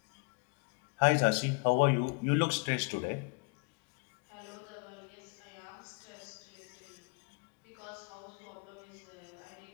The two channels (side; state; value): right; quieter; 33.5 dB